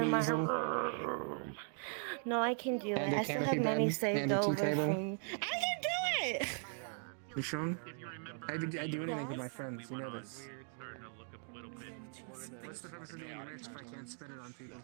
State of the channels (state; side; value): silent; left; 52 dB below the other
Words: in my easel? room. No, I can do it. And a I still have canopy money bed saved and a tea over table? from. I can do it. You sure? I do anything with my friends. You know this. What's the purpose of being rich if I can't spend it on people?